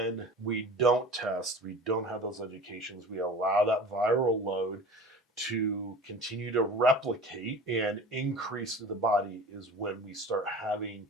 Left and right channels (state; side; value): normal; both; correlation 0.39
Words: we don't test, we don't have those educations, we allow that viral load to continue to replicate and increase through the body, is when we start having